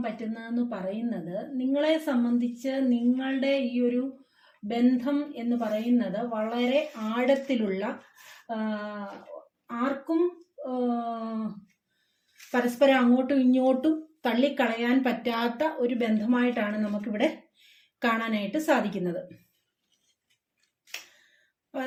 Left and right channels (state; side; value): identical; both; correlation 1.00